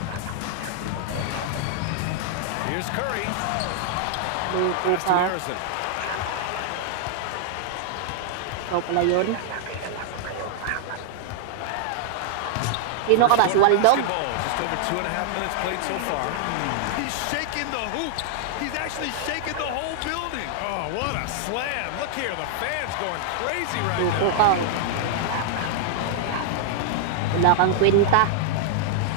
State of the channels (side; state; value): both; different; correlation 0.00